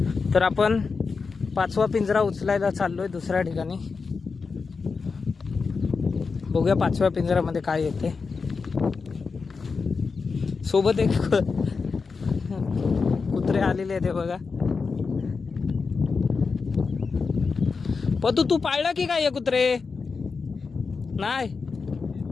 तर आपण 5वा पिंजरा उचलायला चाललोय दुसऱ्या ठिकाणी. बघूया 5व्या पिंजऱ्यामध्ये काय येते. सोबत एक कुत्रे आलेले आहेत, बघा. पतू तू पाळला की काय कुत्रे? नाही.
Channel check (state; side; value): quieter; right; 4.8 dB